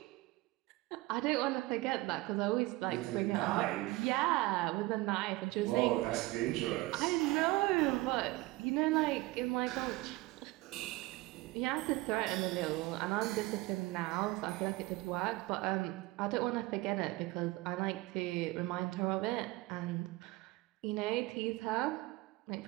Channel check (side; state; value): left; quieter; 20.4 dB